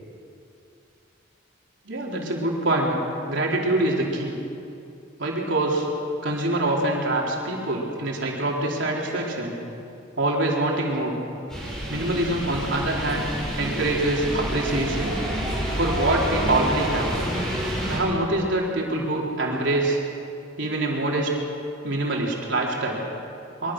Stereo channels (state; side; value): normal; both; correlation 0.17